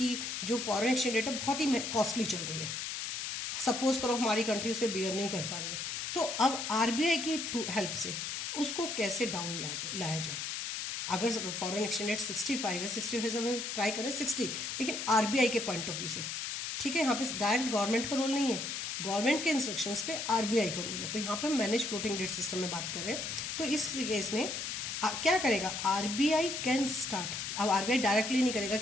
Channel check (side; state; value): left; noise; hiss, 4 dB below the sound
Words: जो foreign exchange rate है बहुत ही costly चल रही है. सपोज करो हमारी कंट्री उसे बेयर नहीं कर पा रही है, तो अब आरबीआई की थ्रू हेल्प से उसको कैसे डाउन लाया जाए. अगर फॉरेन एक्सचेंज रेट 65 है, 65 से हम ट्राई करें 60, लेकिन आरबीआई के पॉइंट ऑफ व्यू से. ठीक है. यहाँ पे डायरेक्ट गवर्नमेंट का रोल नहीं है, गवर्नमेंट के इंस्ट्रक्शंस पे आरबीआई का रोल है. तो यहाँ पे मैनेज फ्लोटिंग रेट सिस्टम में बात कर रहे हैं. तो इस केस में क्या करेगा आरबीआई कैन स्टार्ट. अब आरबीआई डायरेक्टली नहीं करेगा